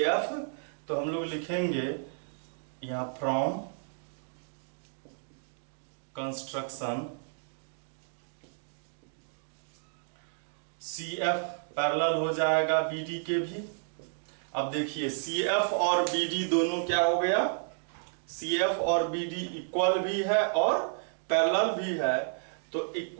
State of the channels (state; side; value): silent; left; digital silence